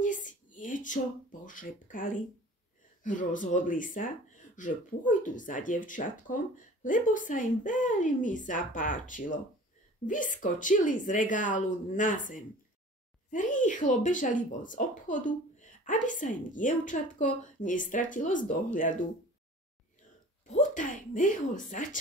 si niečo pošepkali. Rozhodli sa, že pôjdu za dievčatkom, lebo sa im veľmi zapáčilo. Vyskočili z regálu na zem. Rýchlo bežali von z obchodu, aby sa im dievčatko nestratilo z dohľadu. Potajme ho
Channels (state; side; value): normal; both; correlation 0.44